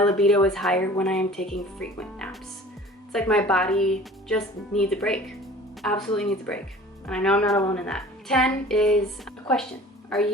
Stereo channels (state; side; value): normal; both; correlation 0.45